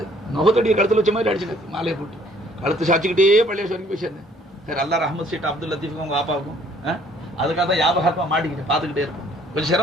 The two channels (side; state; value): both; normal; correlation 0.60